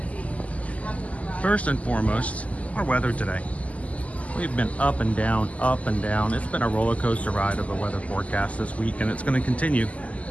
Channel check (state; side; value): late; right; 0.069 ms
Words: First and foremost, our weather today. We've been up and down, up and down. It's been a roller coaster ride of the weather forecast this week, and it's going to continue.